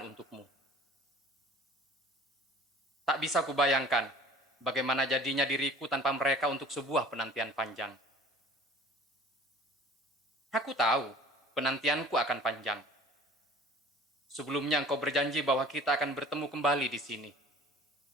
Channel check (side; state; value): both; normal; correlation 0.48